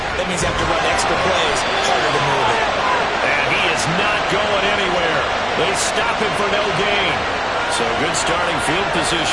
That means you have to run extra plays, harder to move it. And he is not going anywhere. They stop him for no gain. So good starting field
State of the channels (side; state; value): left; noise; hum, 24 dB below the sound